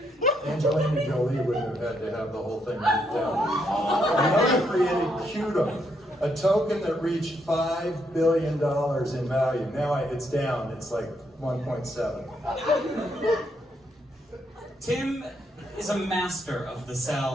Angelina Jolie wouldn't have had to have the whole thing ripped down. Another created Qtum, a token that reached $5 billion in value. Now it's down, it's like 1.7. Tim is a master of the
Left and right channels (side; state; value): both; normal; correlation 0.76